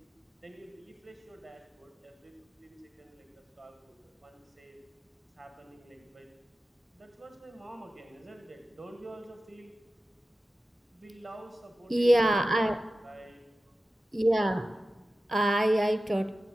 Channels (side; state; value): both; normal; correlation 0.94